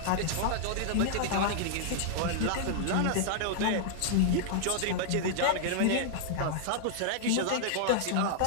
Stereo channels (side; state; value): both; different; correlation -0.01